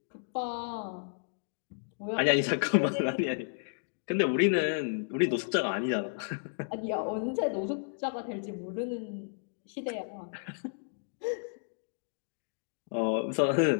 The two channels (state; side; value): silent; right; digital silence